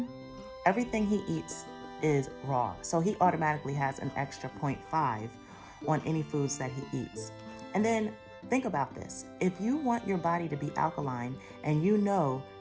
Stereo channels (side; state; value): both; identical; correlation 1.00